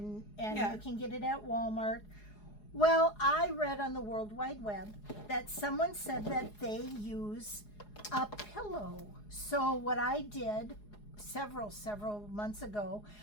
Yeah. you can get it at Walmart. Well, I read on the World Wide Web that someone said that they use a pillow. So what I did several months ago,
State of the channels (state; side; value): late; right; 4.8 ms